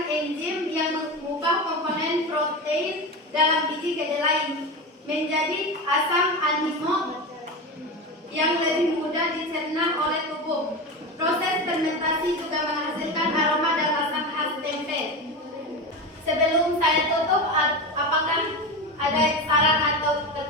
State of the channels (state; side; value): normal; both; correlation 0.22